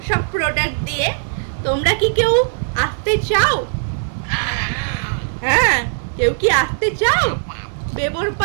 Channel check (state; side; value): silent; left; digital silence